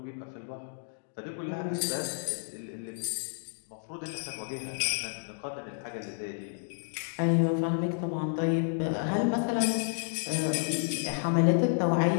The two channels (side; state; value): right; silent; digital silence